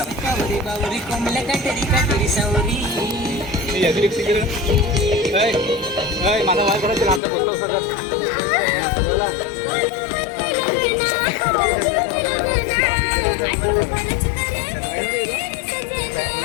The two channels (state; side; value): drops out; right; at 7.2 s